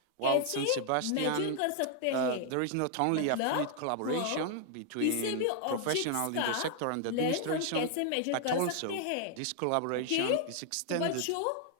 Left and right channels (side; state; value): both; different; correlation 0.00